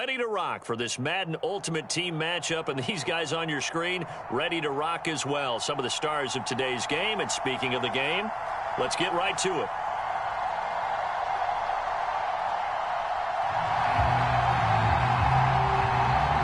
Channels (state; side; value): identical; both; correlation 1.00